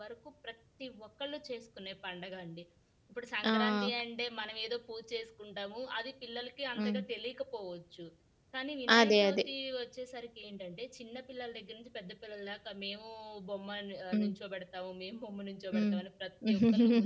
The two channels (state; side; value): identical; both; correlation 1.00